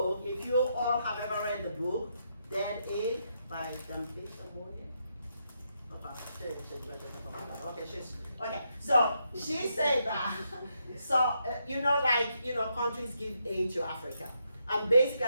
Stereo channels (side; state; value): both; inverted; correlation -0.80